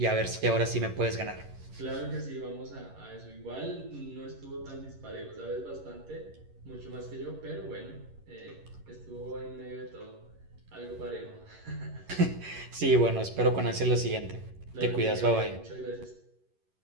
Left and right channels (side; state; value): left; late; 11 ms